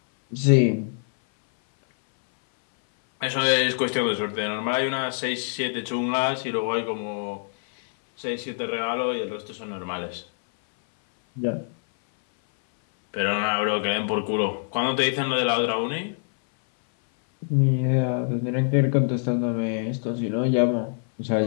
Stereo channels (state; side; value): silent; right; 59 dB below the other